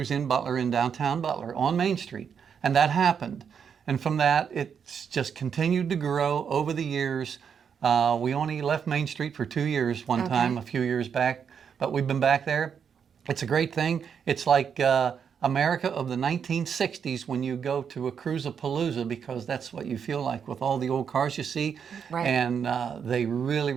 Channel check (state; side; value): quieter; left; 7.2 dB